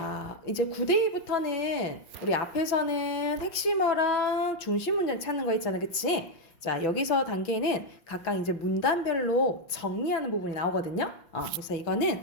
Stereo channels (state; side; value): late; right; 6.0 ms